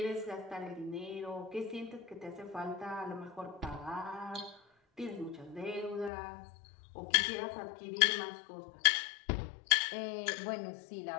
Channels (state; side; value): drops out; right; at 6.1 s